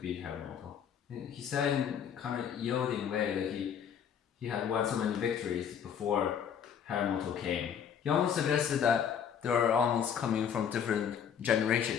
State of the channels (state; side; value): quieter; right; 8.1 dB